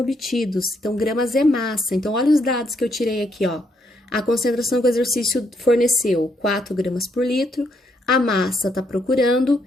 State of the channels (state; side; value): normal; both; correlation 0.74